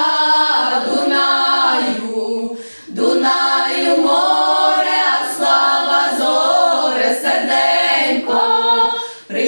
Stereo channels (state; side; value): inverted; both; correlation -1.00